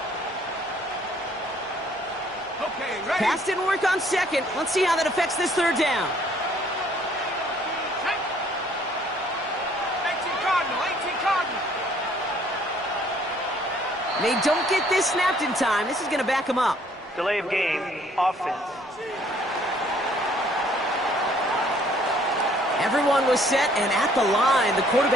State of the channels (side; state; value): both; normal; correlation 0.61